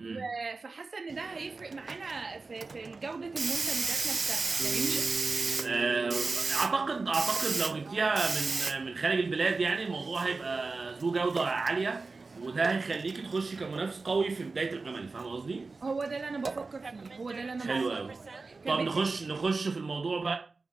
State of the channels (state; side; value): quieter; left; 3.9 dB